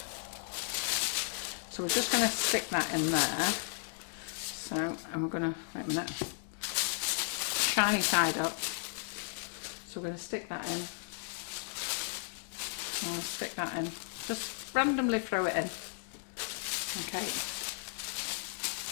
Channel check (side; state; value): right; silent; digital silence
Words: So we're just going to stick that in there. So I'm going to, wait a minute, shiny side up. So we're going to stick that in. I'll stick that in. Just randomly throw it in. Okay.